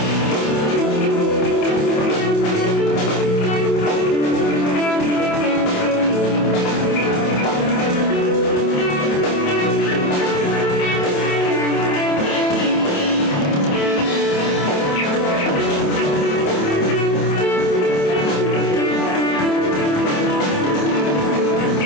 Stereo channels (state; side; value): late; right; 27 ms